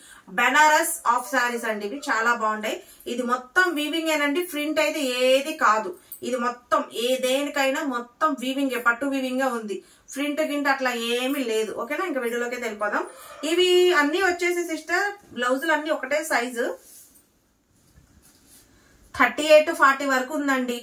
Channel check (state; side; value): identical; both; correlation 1.00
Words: బెనారస్ ఆఫ్ శారీస్ అండి. ఇవి చాలా బాగుంటాయి. ఇది మొత్తం వీవింగ్ ఏనండి. ప్రింట్ అయితే ఏది కాదు. ఇది మొత్తం దేనికైనా మొత్తం వీవింగ్, పట్టు వీవింగ్ గా ఉంది. ప్రింట్ గింట అట్లా ఏమీ లేదు. ఓకేనా? ఇంకా వీడియోలోకి వెళ్ళిపోదాం. ఇవి అన్ని వచ్చేసి సిస్టర్ బ్లౌజులు అన్ని ఒకటే సైజు. 38-40 వరకు ఉందండి.